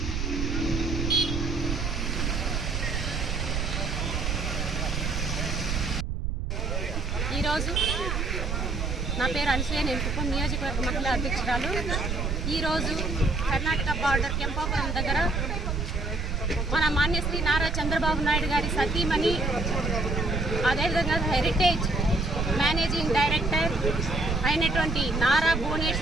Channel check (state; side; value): noise; right; rumble, 1 dB below the sound